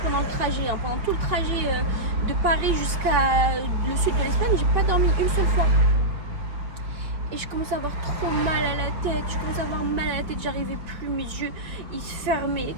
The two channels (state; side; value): late; left; 5.2 ms